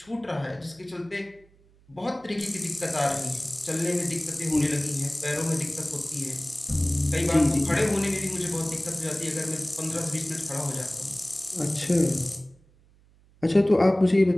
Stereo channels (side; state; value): right; noise; hum, 30 dB below the sound